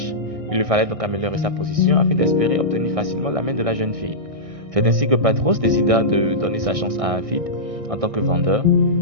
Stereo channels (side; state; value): left; late; 1.6 ms